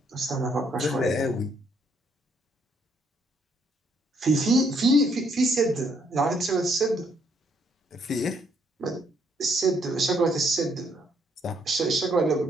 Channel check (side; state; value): both; normal; correlation 0.70